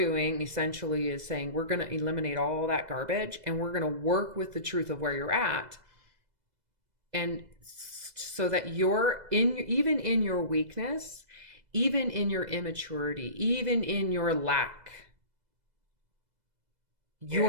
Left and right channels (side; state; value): left; late; 2.0 ms